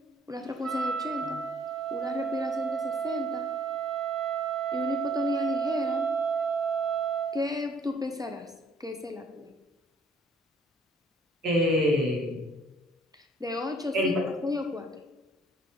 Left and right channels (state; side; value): normal; both; correlation 0.60